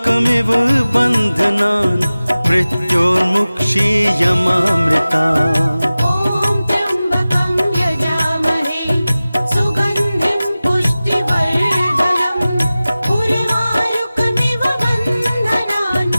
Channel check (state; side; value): inverted; both; correlation -0.97